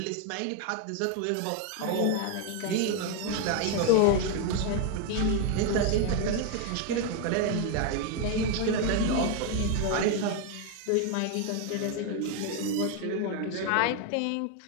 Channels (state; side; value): different; both; correlation 0.01